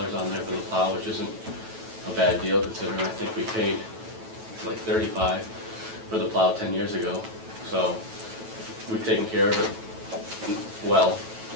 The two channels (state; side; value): late; left; 9.1 ms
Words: on there for the plow, which isn't a bad deal considering I think we paid like 35 for the plow 10 years ago. So, we've taken care of it well.